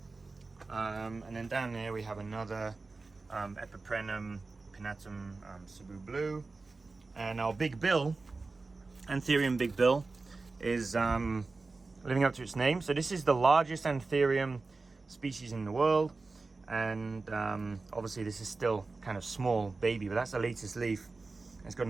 And then down there we have another Epiprenum pinnatum Cebu blue, and our Big Bill, Antherium Big Bill, is living up to its name. So this is the largest Antherium species in the world, and obviously this is still kind of small baby, but that's the latest leaf. It's got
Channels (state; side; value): quieter; left; 3.7 dB